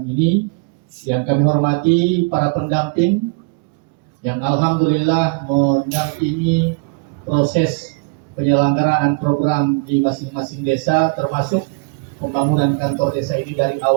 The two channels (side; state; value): left; quieter; 30.7 dB